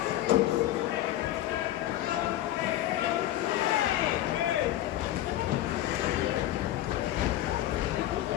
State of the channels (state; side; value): quieter; right; 13.8 dB